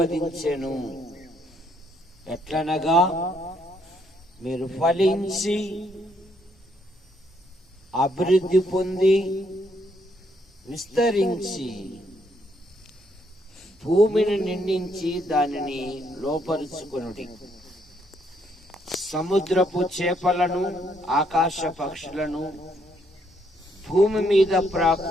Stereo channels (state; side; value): normal; both; correlation 0.71